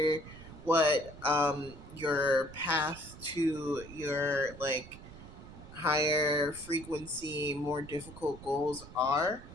what your path to your like higher frequency, more difficult goals are,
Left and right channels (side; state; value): right; noise; rumble, 16 dB below the sound